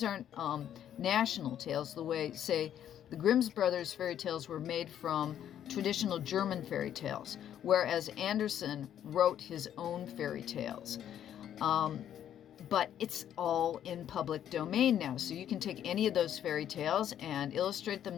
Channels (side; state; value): right; quieter; 10.3 dB